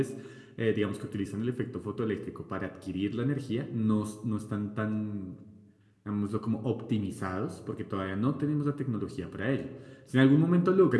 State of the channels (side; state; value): both; identical; correlation 1.00